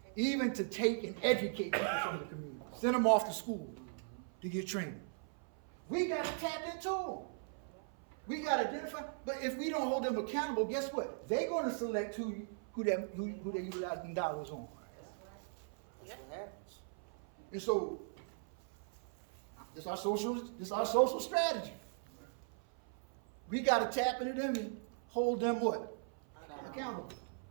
even to take and educate people from the community, send them off to school to get trained. We got to tap into them. We got to identify, but if we don't hold them accountable, guess what? They're going to select who they utilize them dollars on. That's what happens. And so, this is our social strategy. We got to tap into them and hold them what? Accountable.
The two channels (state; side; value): silent; left; 52 dB below the other